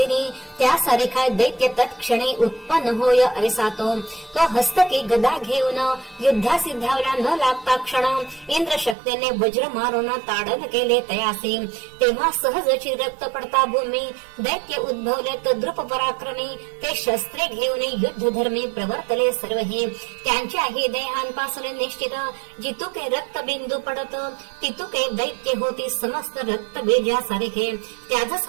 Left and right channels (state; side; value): drops out; left; at 9.0 s